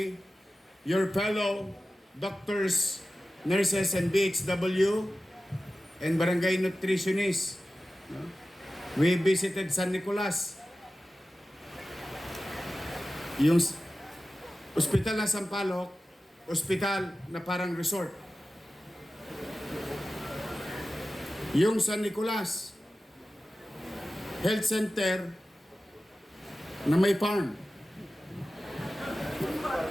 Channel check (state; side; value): normal; both; correlation 0.94